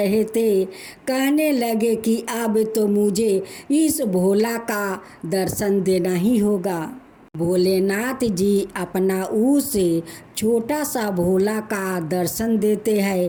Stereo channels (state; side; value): identical; both; correlation 1.00